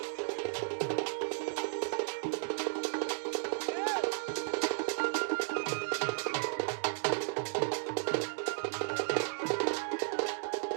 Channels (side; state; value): left; silent; digital silence